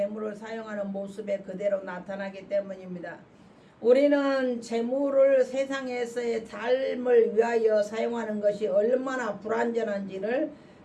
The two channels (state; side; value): identical; both; correlation 1.00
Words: 사용하는 모습에 그대로 나타나기 때문입니다. 우리는 재물을 세상에서의 삶을 위하여 사용하는 것이 얼마나 불완전한지를